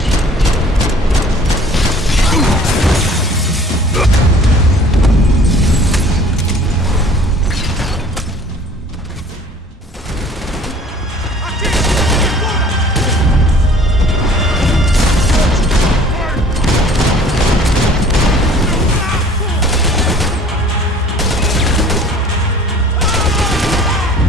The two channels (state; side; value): normal; both; correlation 0.50